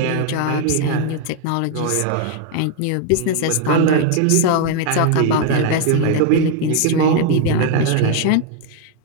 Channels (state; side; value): different; both; correlation 0.01